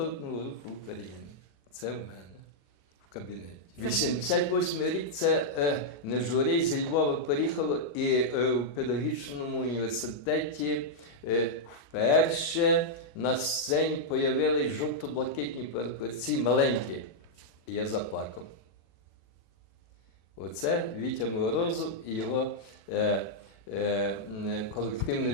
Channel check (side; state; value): right; late; 37 ms